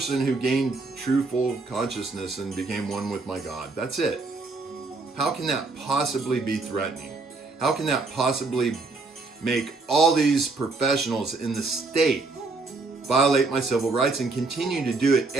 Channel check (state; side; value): quieter; left; 3.7 dB